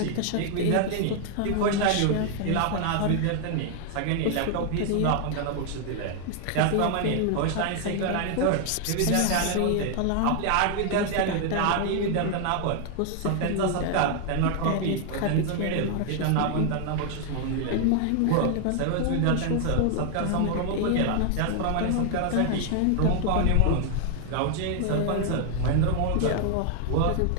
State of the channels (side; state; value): both; different; correlation 0.00